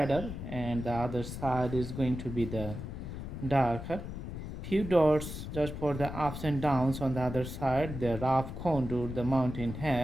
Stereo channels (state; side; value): noise; left; rumble, 8 dB below the sound